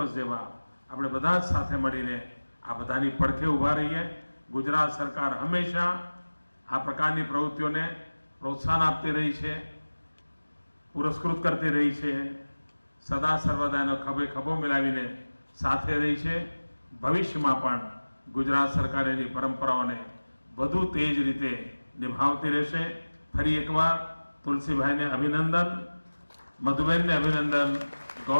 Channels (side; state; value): both; inverted; correlation -1.00